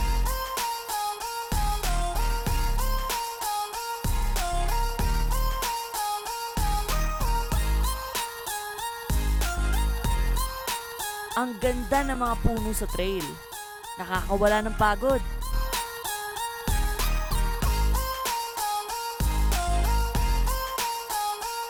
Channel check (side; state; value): both; identical; correlation 1.00